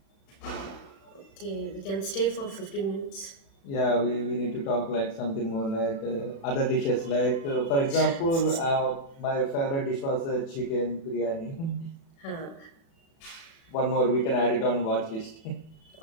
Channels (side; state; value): right; late; 36 ms